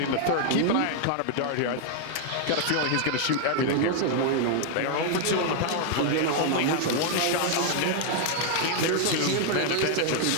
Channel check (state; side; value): different; both; correlation 0.00